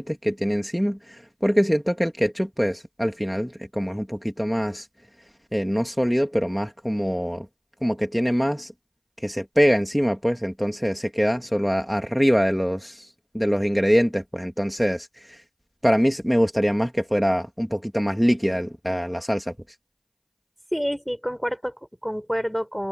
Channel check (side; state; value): both; identical; correlation 1.00